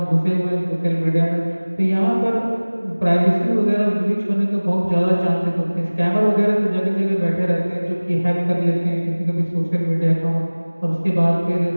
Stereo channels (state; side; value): inverted; both; correlation -1.00